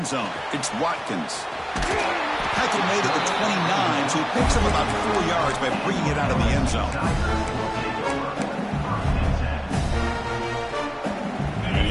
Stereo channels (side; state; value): both; identical; correlation 1.00